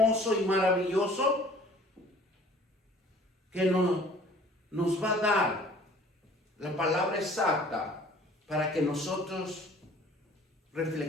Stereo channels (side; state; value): both; normal; correlation 0.52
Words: y maravilloso que nos va a dar la palabra exacta para que nosotros